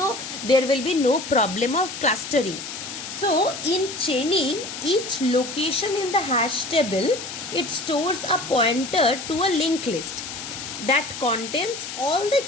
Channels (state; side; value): noise; left; hiss, 8 dB below the sound